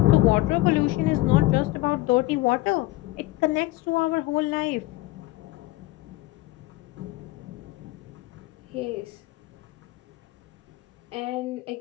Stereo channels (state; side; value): quieter; right; 18.6 dB